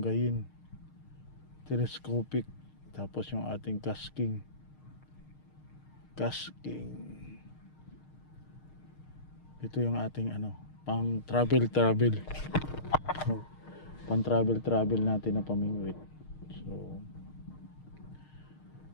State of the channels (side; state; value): right; late; 6.5 ms